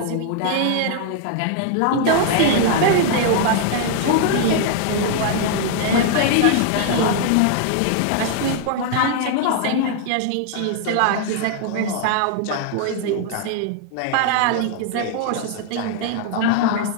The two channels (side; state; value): both; different; correlation 0.00